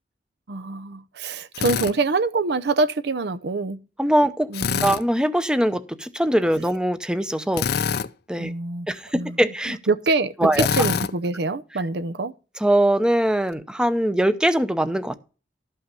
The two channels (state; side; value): normal; both; correlation 0.63